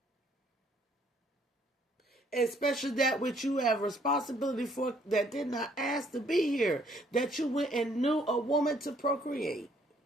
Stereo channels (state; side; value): normal; both; correlation 0.65